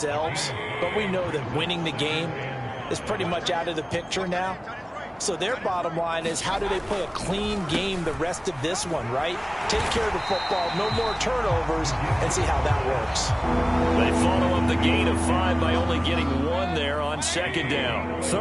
but we know that winning the game is pretty much out of the picture now. So their bottom line is, how do they play a clean game the rest of this one, right? Take care of the football, no more turnovers, and see how that works. They follow up the gain of 5 by only getting 1 there on 2nd down.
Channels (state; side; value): identical; both; correlation 1.00